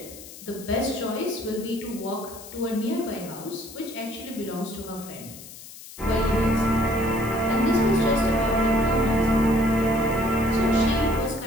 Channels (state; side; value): noise; left; hiss, 16 dB below the sound